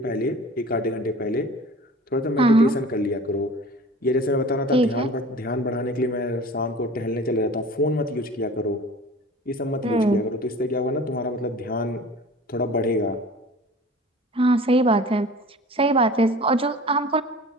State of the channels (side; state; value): both; normal; correlation 0.42